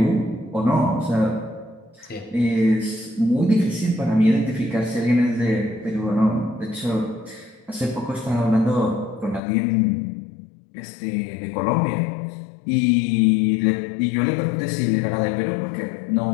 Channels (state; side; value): drops out; right; at 9.4 s